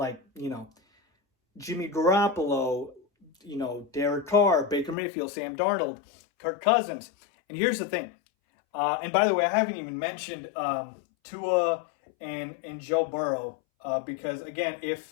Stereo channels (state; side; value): drops out; right; at 5.0 s